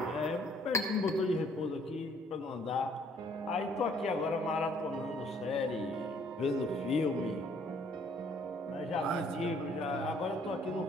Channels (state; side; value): normal; both; correlation 0.62